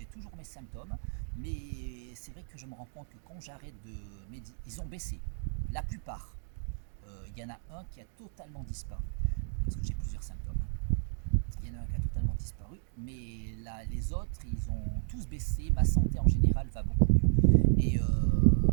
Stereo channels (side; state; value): left; silent; digital silence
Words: toujours mes symptômes, mais c'est vrai que je me rends compte que quand j'arrête de méditer, ils ont baissé. La plupart. Il y en a un qui a totalement disparu. Parce que j'ai plusieurs symptômes. Il y en a un qui a totalement disparu, mais là, les autres, ils ont tous baissé. Ma santé en général va beaucoup mieux.